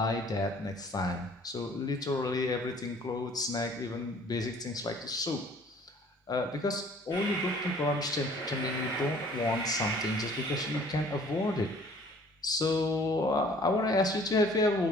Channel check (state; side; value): normal; both; correlation 0.54